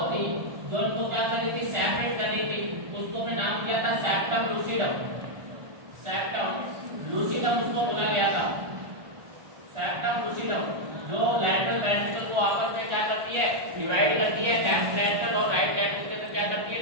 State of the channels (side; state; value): left; late; 1.4 ms